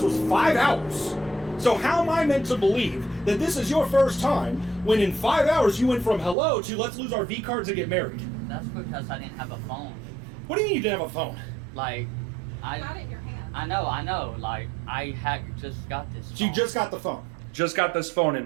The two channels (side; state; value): left; drops out; at 6.4 s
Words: 5 hours. So how am I meant to believe that this is your first time when in 5 hours you went from hello to let's lose our V cards and get married? That's because I didn't have a phone. What do you mean you didn't have a phone? Like, Got it in your hand. I know. Like, I had just got this phone. So you just got the phone. Just got this phone and